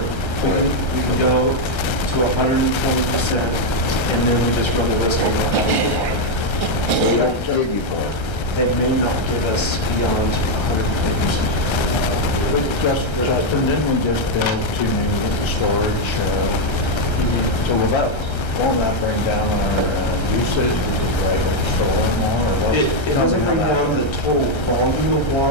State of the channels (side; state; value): right; late; 1.3 ms